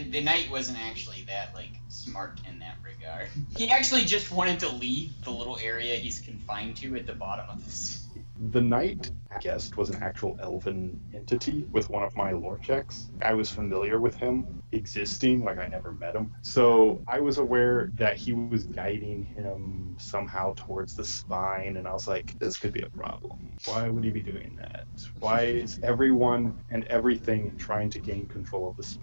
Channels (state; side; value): inverted; both; correlation -1.00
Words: knight wasn't actually that, like, smart in that regard. He actually just wanted to leave the little area he's confined to at the bottom of this. the knight, I guessed, was an actual elven entity with one of my lore checks. I was familiar with him existing, like I never met him. So I was aware that he was guiding him somehow towards the spine, and I was like, this could be a problem. Why would he be doing that? Why is everyone and everything trying to gain control of the